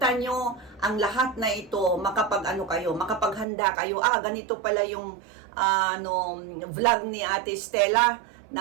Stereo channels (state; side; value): drops out; left; at 3.5 s